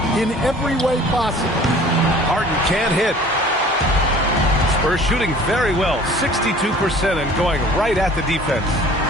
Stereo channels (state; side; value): normal; both; correlation 0.48